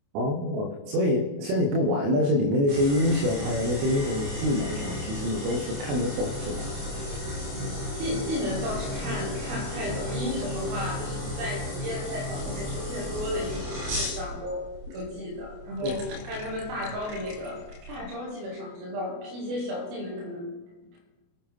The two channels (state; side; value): late; left; 28 ms